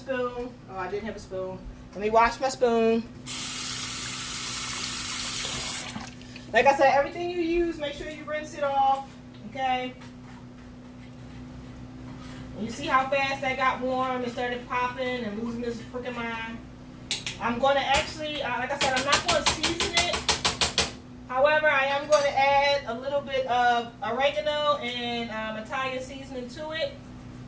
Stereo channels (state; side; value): identical; both; correlation 1.00